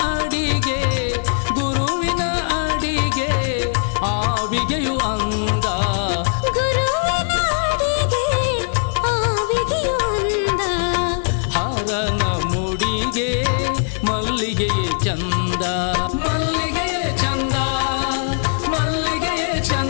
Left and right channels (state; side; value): silent; right; 66 dB below the other